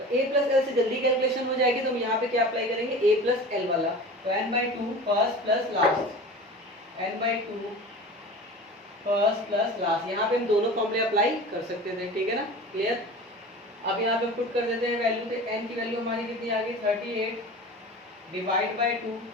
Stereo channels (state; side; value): normal; both; correlation 0.36